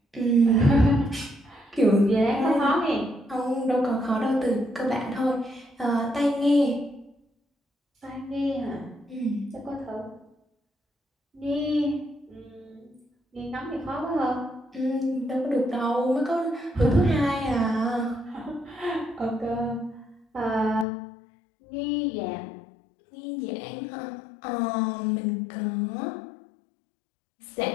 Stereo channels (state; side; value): drops out; right; at 20.9 s